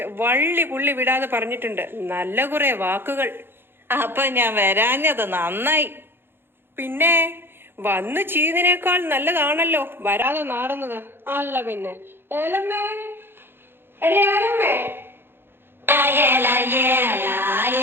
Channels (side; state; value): left; late; 0.10 ms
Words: വള്ളി പുള്ളി വിടാതെ പറഞ്ഞിട്ടുണ്ട്. നല്ല കുറെ വാക്കുകൾ. അപ്പൊ ഞാൻ വരാഞ്ഞത് നന്നായി. പിന്നെ വന്നു ചെയ്തതിനേക്കാൾ നല്ലതാണല്ലോ വരാതെ നാറുന്നത്. അല്ല പിന്നെ ഏലമ്മേ, എടി ഏലമ്മേ.